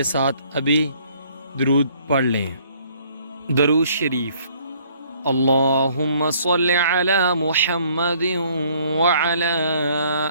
ساتھ ابھی درود پڑھ لیں۔ درود شریف۔ اللہم صل علی محمد وعلی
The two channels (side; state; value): both; inverted; correlation -0.61